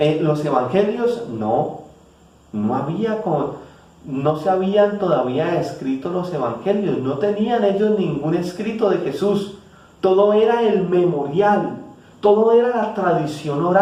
los evangelios? No se habían todavía escrito los evangelios, no tenían ellos ningún escrito de Jesús. Todo era el memorial, todo era la tradición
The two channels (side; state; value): both; identical; correlation 1.00